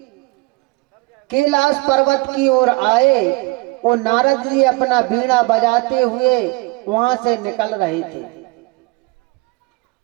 कैलाश पर्वत की ओर आए और नारद जी अपना बीड़ा बजाते हुए वहां से निकल रहे थे।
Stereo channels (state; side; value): quieter; left; 24.4 dB